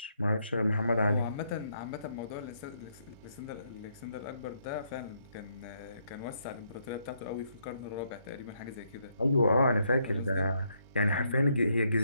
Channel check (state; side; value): inverted; both; correlation -0.74